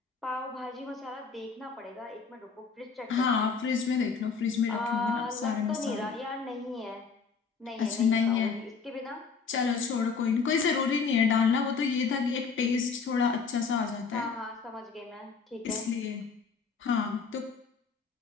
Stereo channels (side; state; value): right; quieter; 5.4 dB